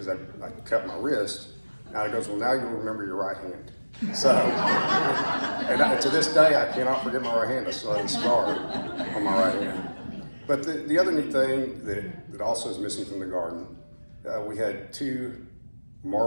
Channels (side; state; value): both; inverted; correlation -1.00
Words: I cut my wrist. Now he goes, well, now you'll remember your right hand. So, and to this day, I cannot forget my right hand. I still have a scar on my right hand. But the other neat thing that also is missing from the garden, we had 2